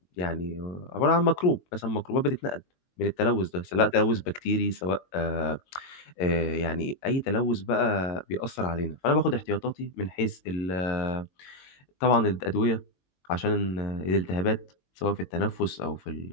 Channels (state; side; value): late; right; 22 ms